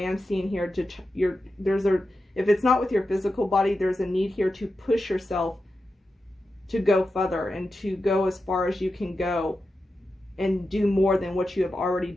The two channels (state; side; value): normal; both; correlation 0.90